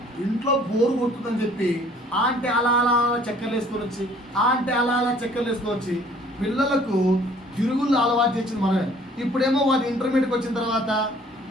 ఇంట్లో బోరు కొడుతుందని చెప్పి అంటే అలా చక్కెరలు వేసుకొని వచ్చి పిల్లలకు తిరుగుళ్ళు అలవాటు చేసింది మనమే ఇప్పుడేమో వాడు ఇంటర్మీడియట్కి వచ్చిన తర్వాత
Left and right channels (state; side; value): normal; both; correlation 0.56